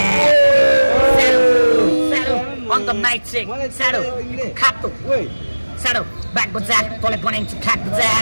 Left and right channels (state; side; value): inverted; both; correlation -1.00